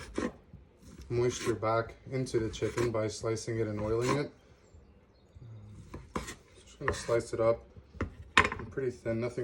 moisture back into the chicken by slicing it and oiling it. Just going to slice it up pretty thin,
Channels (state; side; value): identical; both; correlation 1.00